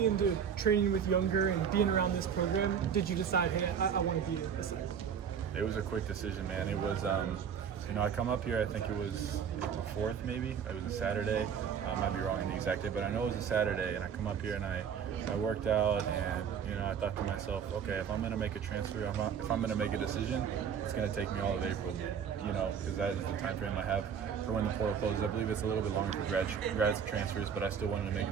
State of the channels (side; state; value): left; quieter; 7.5 dB